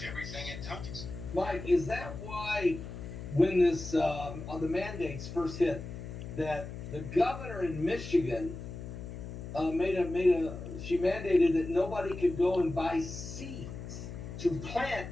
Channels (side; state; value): left; noise; hum, 10 dB below the sound